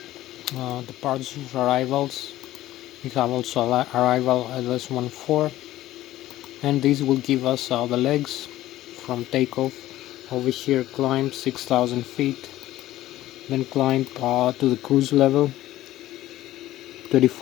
departures, arrivals. We have also arrival at LS14, and this will give us the legs from takeoff. Over here climb 6,000 feet, then climb to the cruise level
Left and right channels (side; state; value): right; quieter; 15.0 dB